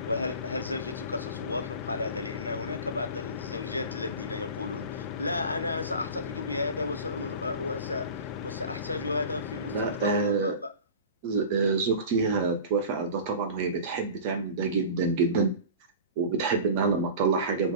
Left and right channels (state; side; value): inverted; both; correlation -0.35